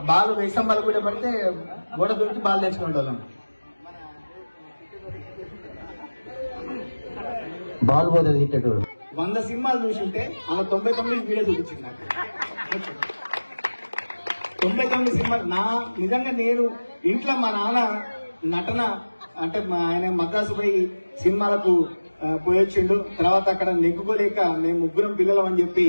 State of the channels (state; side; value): inverted; both; correlation -1.00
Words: బాల్ వేసాం, బాల్ కూడా పడితే గోడ దొరికి బాల్ తెచ్చుకునే వాళ్ళం. బాల్ పోతుంది హిట్టెడ్. 100 సినిమాలు చూసుంటే అలా 99 వీడియో చూపించింది నాకు. 99 సినిమాలు నిజంగా నేను ఇంట్లో మా నాన్న నటన అంటే ఆయన మద్రాసు పోయి సినిమాలకు పోయొచ్చిండు. తర్వాత అక్కడ నెగ్గుకోలేక మేము 3 పిల్లలం అని చెప్పి